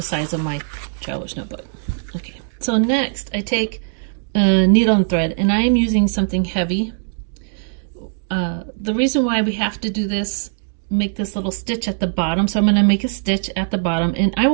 size of my traveler's notebook. Okay, so next I take a needle and thread, and I am using something heavy. The reason why we have to do this, make this little stitch at the bottom, so I'm going to make a stitch at the bottom, and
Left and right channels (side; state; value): left; silent; digital silence